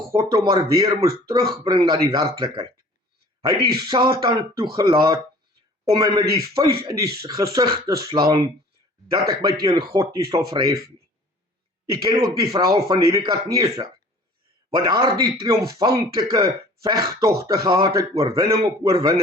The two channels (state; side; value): normal; both; correlation 0.48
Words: hom maar weer moes terugbring na die werklikheid. Hy het die Satan toegelaat om my met die vuis in die gesig te slaan, dat ek my teen God nie sal verhef nie. Jy ken ook die verhaal van Nebukadneser, wat daardie triomfantelike vegtogte gehad het, oorwinning op